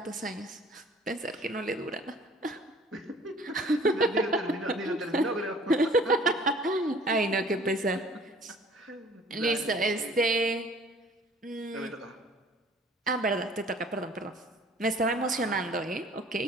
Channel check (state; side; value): normal; both; correlation 0.52